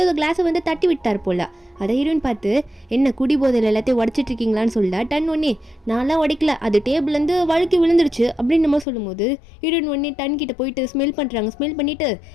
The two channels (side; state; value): right; drops out; at 8.8 s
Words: கிளாஸை வந்து தட்டி விட்டார் போல. அதை ஹீரோயின் பார்த்து, என்ன குடி போதையில் எல்லாத்தையும் உடச்சிட்டு இருக்கீங்களான்னு சொல்ல, டன் ஒன்னே நான்லாம் உடைக்கல, அது டேபிள்லேருந்து வழுக்கி விழுந்துருச்சு அப்படின்னு நம்ம சொல்லும்போது ஹீரோயின் ஒன்னே டன் கிட்ட போயிட்டு ஸ்மெல் பண்ணுறாங்க. ஸ்மெல் பண்ணிட்டு,